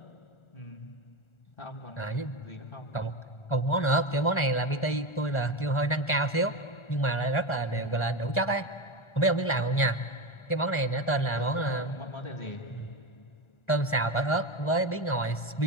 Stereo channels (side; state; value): right; late; 1.4 ms